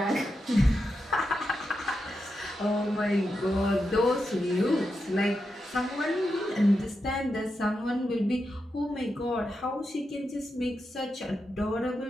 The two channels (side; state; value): both; normal; correlation 0.87